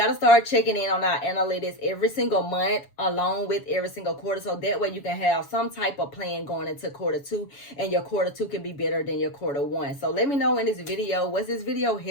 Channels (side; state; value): right; late; 7.1 ms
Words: to start checking in on our analytics every single month along with every single quarter, so that way you can have some type of plan going into Q2, and your Q2 can be better than your Q1. So let me know in this video, was this video